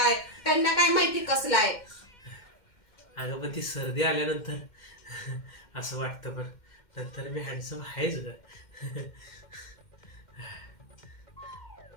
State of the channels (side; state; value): right; late; 2.1 ms